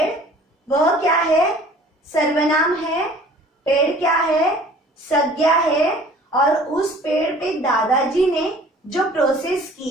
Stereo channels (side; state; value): both; normal; correlation 0.50